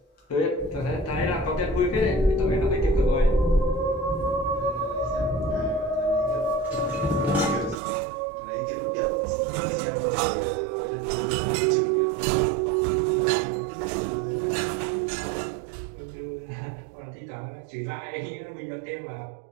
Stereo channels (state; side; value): drops out; left; at 7.8 s